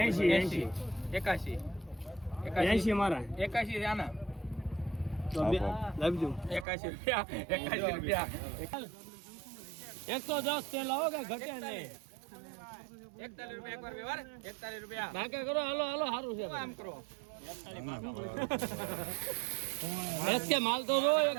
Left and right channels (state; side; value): drops out; left; at 6.7 s